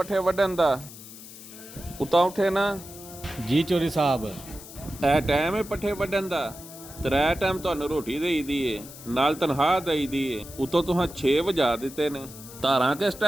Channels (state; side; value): noise; left; hiss, 16 dB below the sound